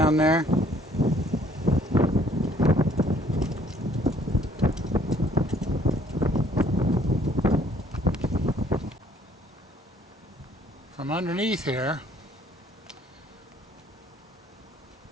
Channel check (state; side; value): normal; both; correlation 0.61